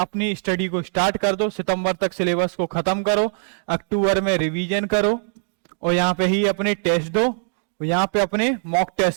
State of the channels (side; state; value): left; silent; 61 dB below the other